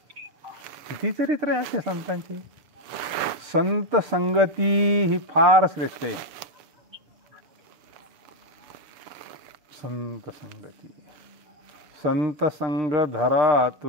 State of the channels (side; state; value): left; late; 7.0 ms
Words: किती चरित्र आहे असे संतांचे. संत संगती ही फार श्रेष्ठ आहे. संत संगती, संत संग धरा